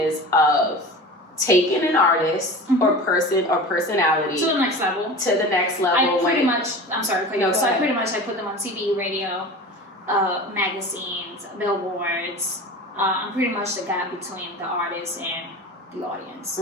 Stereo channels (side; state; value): both; normal; correlation 0.34